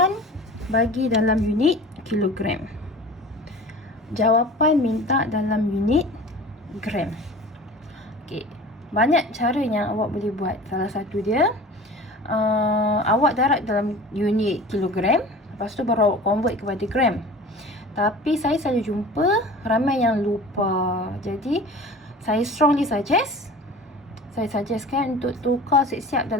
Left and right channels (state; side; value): normal; both; correlation 0.40